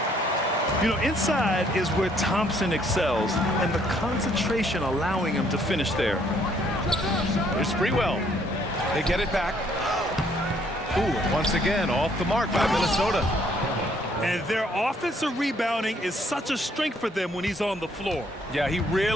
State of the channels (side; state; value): both; normal; correlation 0.66